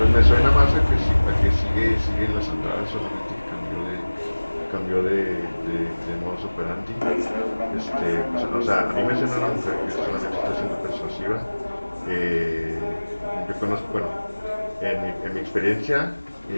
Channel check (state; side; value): inverted; both; correlation -1.00